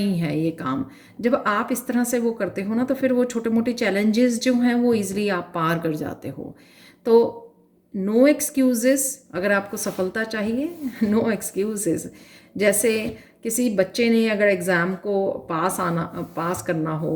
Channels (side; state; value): both; identical; correlation 1.00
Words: है ये काम। जब आप इस तरह से वो करते हो ना, तो फिर वो छोटे मोटे चैलेंजेस जो हैं वो इजीली आप पार कर जाते हो। तो नो एक्सक्यूजेस, अगर आपको सफलता चाहिए नो एक्सक्यूजेस। जैसे किसी बच्चे ने अगर एग्ज़ाम को पास करना